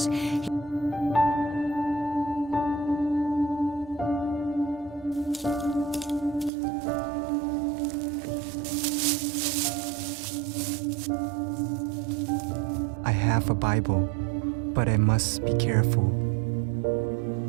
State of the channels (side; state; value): left; drops out; at 6.5 s